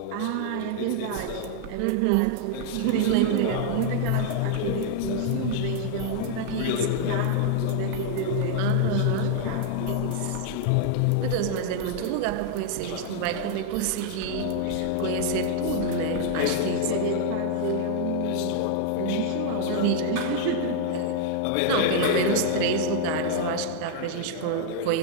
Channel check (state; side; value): different; both; correlation 0.00